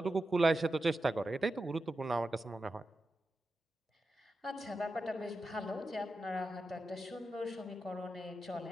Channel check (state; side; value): normal; both; correlation 0.90